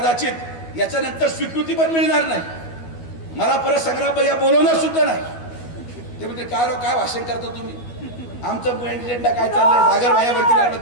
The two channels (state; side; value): late; right; 12 ms